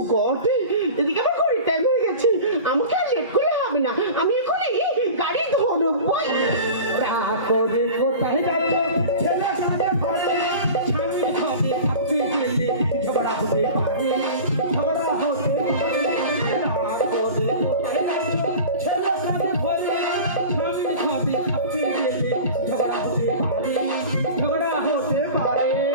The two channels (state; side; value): inverted; both; correlation -0.36